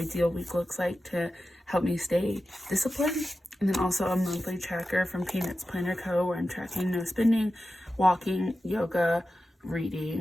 week looks like to help me stay disciplined. And then also a monthly tracker from Peanuts Planner Co., where I'm tracking no spending, walking, yoga,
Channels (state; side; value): normal; both; correlation 0.92